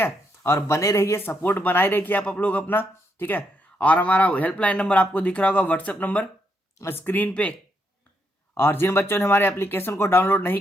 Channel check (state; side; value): normal; both; correlation 0.78